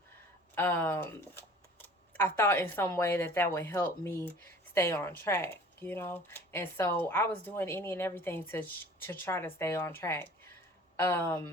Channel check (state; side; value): normal; both; correlation 0.47